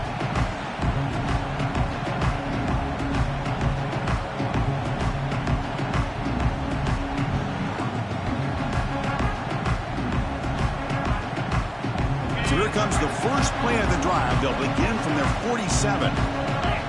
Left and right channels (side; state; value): both; identical; correlation 1.00